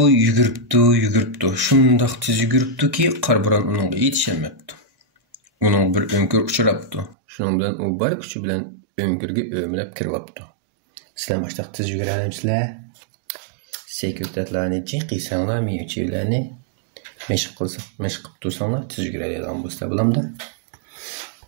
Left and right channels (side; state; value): left; drops out; at 7.2 s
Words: yuguribdi. Shundoq tez yuguribdiki, qarbo'ron uningga yetishmabdi. Uning bir önkür uchrabdi. Shuning bilan u bor kuchi bilan önkürga o'mlab kiribdi. Sizlar boshliq tez yugurasizlar. Sekretlarni chiqisanglar, miyuchilarni mashq qilib tursanglar, tez yuguradigan bo'lsa bo'lamdi.